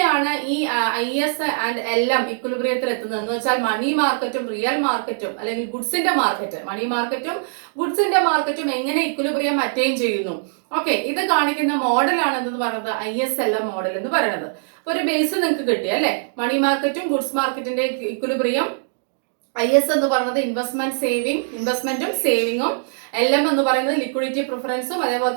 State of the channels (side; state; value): left; silent; digital silence